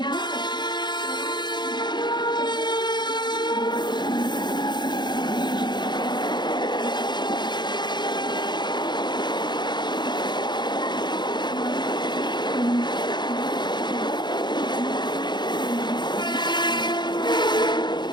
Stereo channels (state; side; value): late; right; 0.21 ms